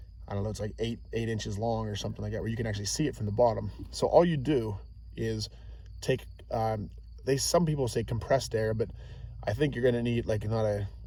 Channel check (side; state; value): both; identical; correlation 1.00